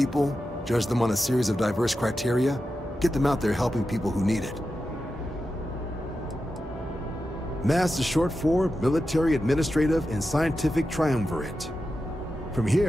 judge them on a series of diverse criteria, get them out there helping people who need it. MAST is short for Military, Administrative, and Scientific Triumvirate. From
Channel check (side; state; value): both; normal; correlation 0.90